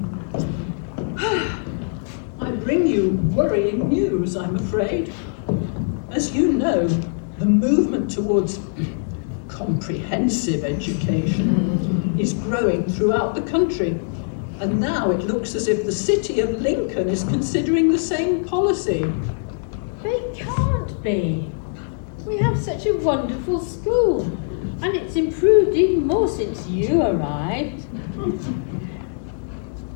I bring you worrying news, I'm afraid. As you know, the movement towards comprehensive education is growing throughout the country. And now it looks as if the city of Lincoln is considering the same policy. They can't be. We have such a wonderful school, and it's improved even more since you arrived.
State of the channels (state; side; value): silent; right; digital silence